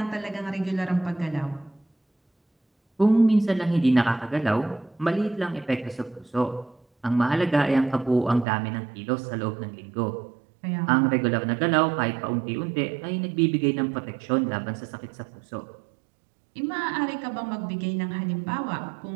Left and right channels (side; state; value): left; drops out; at 8.5 s